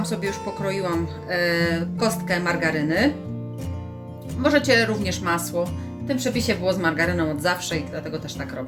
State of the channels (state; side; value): identical; both; correlation 1.00